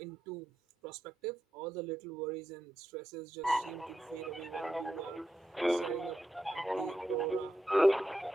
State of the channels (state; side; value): normal; both; correlation 0.86